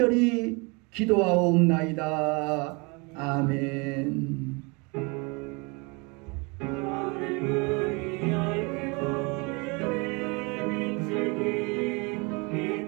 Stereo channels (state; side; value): quieter; left; 29.5 dB